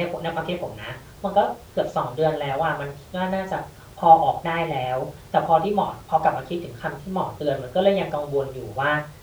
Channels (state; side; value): identical; both; correlation 1.00